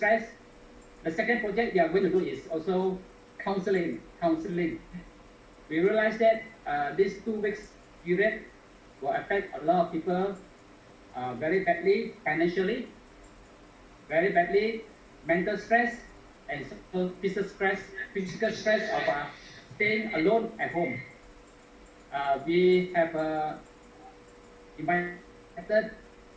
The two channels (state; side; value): identical; both; correlation 1.00